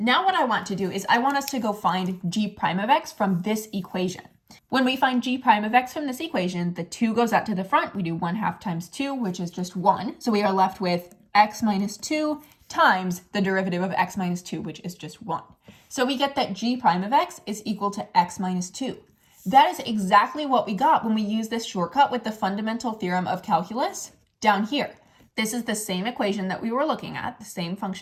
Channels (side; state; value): both; identical; correlation 1.00